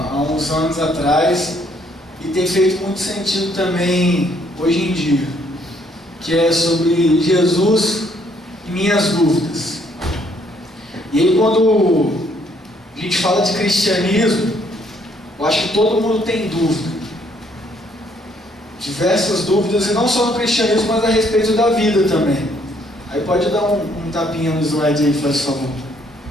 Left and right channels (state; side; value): normal; both; correlation 0.67